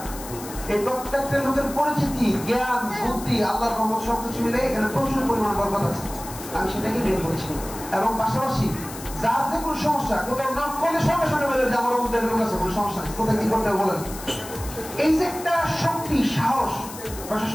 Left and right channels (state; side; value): noise; left; hiss, 13 dB below the sound